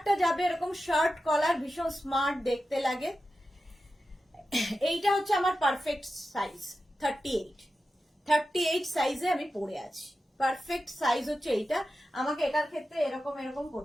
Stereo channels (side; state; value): both; normal; correlation 0.92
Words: যাবে এরকম শার্ট কলার, ভীষণ স্মার্ট দেখতে লাগে। এইটা হচ্ছে আমার পারফেক্ট সাইজ, 38 সাইজে আমি পরে আছি। পারফেক্ট সাইজ হচ্ছে এইটা, আমাকে এটার ক্ষেত্রে এরকম এরকম